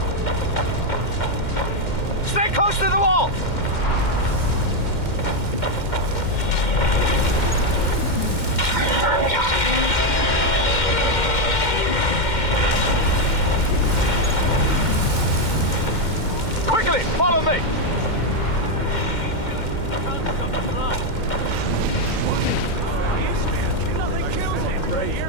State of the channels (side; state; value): right; late; 2.1 ms